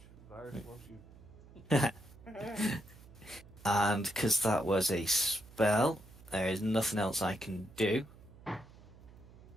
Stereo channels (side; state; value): right; noise; hum, 21 dB below the sound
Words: Virus loves you. And because that was a spell, there is nothing else I can do.